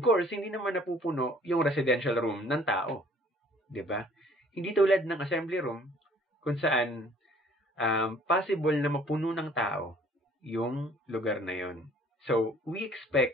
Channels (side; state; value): both; normal; correlation 0.56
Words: course, hindi naman napupuno yung residential room ng tao. 'Di ba? Hindi tulad ng assembly room kung saan possible na mapuno ng tao yung lugar na yon. So, we